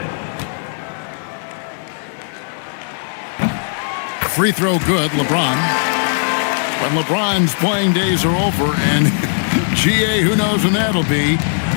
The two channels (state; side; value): silent; right; 67 dB below the other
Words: Free throw good, LeBron. But LeBron's playing days are over, and GA, who knows when that'll be.